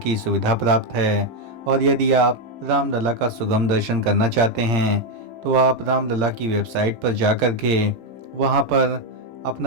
सुविधा प्राप्त है। और यदि आप रामलला का सुगम दर्शन करना चाहते हैं तो आप रामलला की वेबसाइट पर जाकर के वहाँ पर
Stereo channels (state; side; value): late; left; 17 ms